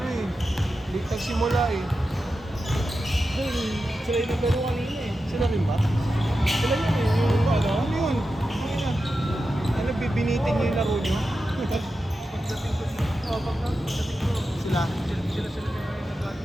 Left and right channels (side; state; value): both; normal; correlation 0.91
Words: eh. Late nagsimula eh. Sila yung naglaro kanina eh. Sila rin ba? Sila yun eh. Yung ano? Ano yun? Ano, bibinitin niyo yung laro niyo? Pagdating ko, sila